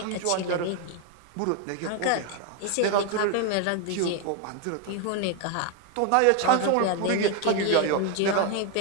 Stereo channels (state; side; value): different; both; correlation 0.01